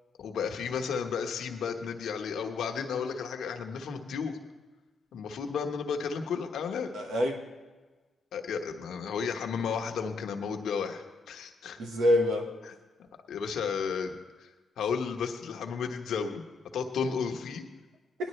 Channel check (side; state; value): right; quieter; 3.8 dB